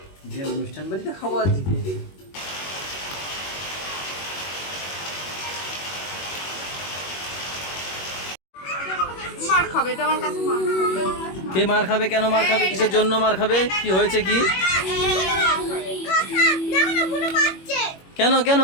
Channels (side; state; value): right; late; 21 ms